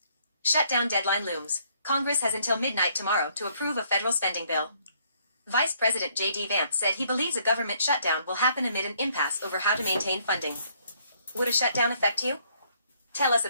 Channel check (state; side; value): inverted; both; correlation -0.67